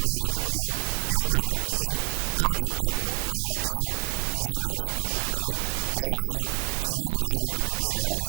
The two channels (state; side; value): silent; left; 60 dB below the other